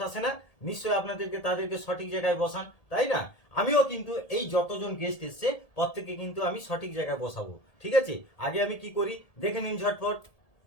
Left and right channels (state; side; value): late; right; 1.8 ms